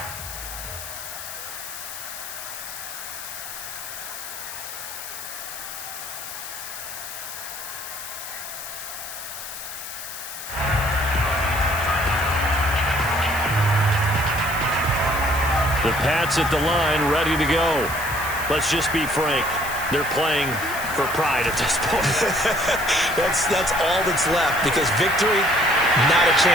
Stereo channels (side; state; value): left; noise; hiss, 10 dB below the sound